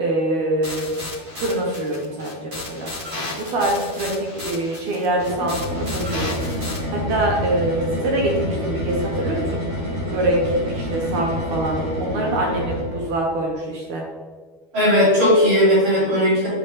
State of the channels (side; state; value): left; late; 12 ms